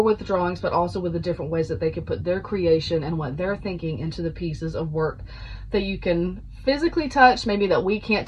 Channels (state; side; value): identical; both; correlation 1.00